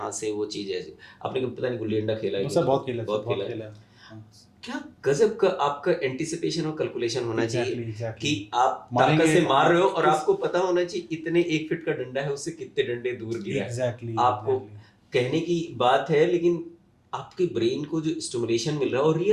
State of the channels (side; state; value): both; identical; correlation 1.00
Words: से वो चीज ऐसे। आपने कभी पता नहीं गुल्ली डंडा खेला है बस कि सर नहीं, बहुत खेला है सर, बहुत बहुत खेला है। खेला है। हाँ। क्या गजब का आपका एंटिसिपेशन और कैलकुलेशन होना चाहिए एग्जैक्टली एग्जैक्टली। कि आप ताकत मारेंगे से मार रहे हो, और किस। आपको पता होना चाहिए इतने 1 फीट का डंडा है, उससे कितने डंडे दूर गिरा है। एग्जैक्टली आपको एग्जैक्टली। कहने की बात है, लेकिन आपके ब्रेन को जो स्टिमुलेशन मिल रहा है, और